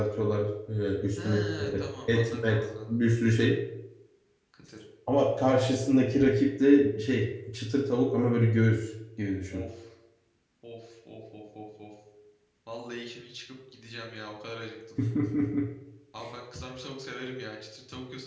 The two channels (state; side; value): identical; both; correlation 1.00